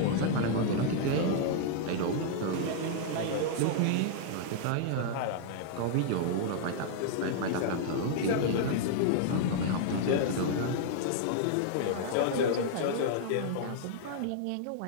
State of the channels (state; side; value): different; both; correlation -0.01